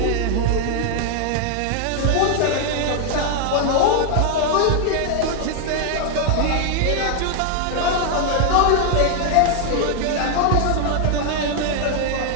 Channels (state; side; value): different; both; correlation 0.00